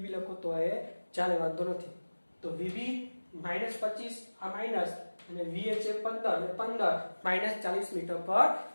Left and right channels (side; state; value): both; inverted; correlation -1.00